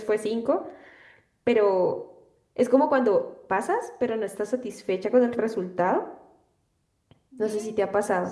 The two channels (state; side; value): identical; both; correlation 1.00